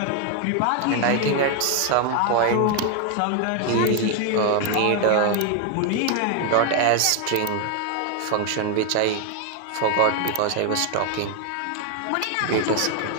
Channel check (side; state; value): both; different; correlation 0.01